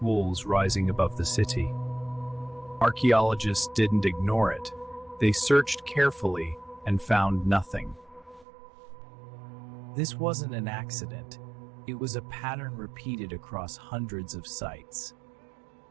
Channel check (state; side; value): drops out; left; at 8.5 s